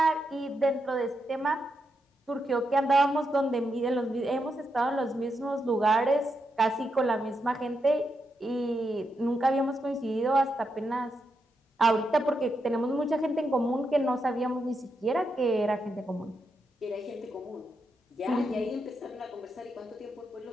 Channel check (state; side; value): normal; both; correlation 0.83